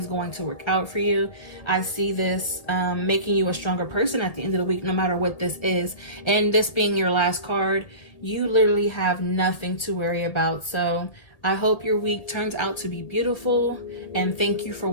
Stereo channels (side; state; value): right; late; 1.8 ms